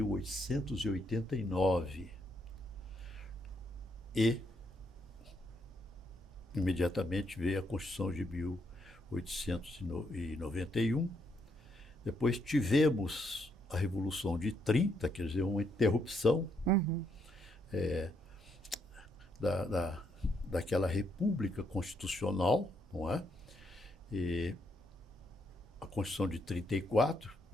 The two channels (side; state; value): both; normal; correlation 0.75